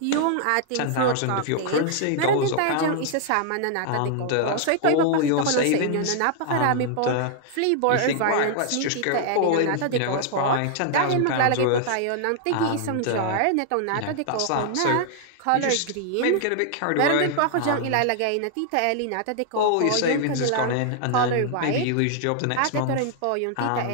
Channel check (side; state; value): both; different; correlation 0.00